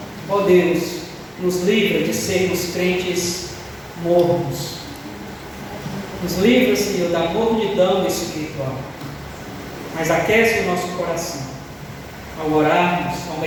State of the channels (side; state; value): both; identical; correlation 1.00